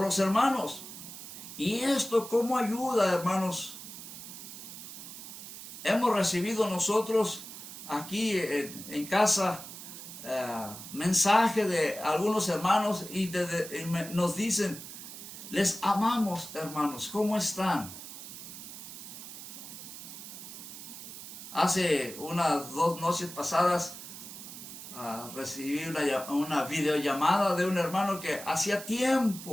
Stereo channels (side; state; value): right; noise; hiss, 12 dB below the sound